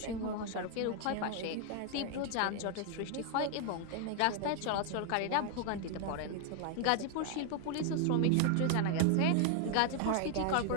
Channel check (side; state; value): both; different; correlation 0.00